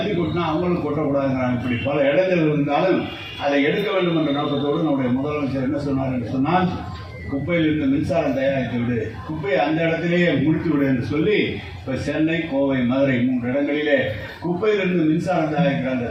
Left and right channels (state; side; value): identical; both; correlation 1.00